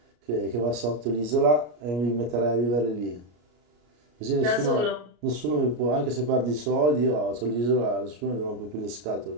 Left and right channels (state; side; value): late; left; 33 ms